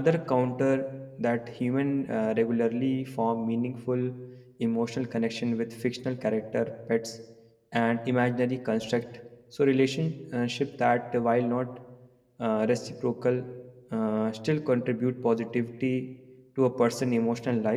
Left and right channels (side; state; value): both; identical; correlation 1.00